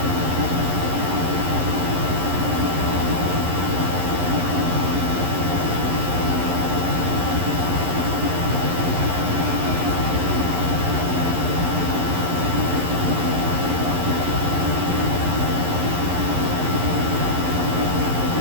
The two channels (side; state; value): left; late; 11 ms